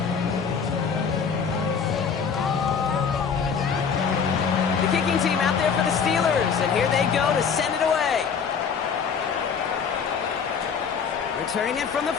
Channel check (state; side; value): quieter; right; 6.3 dB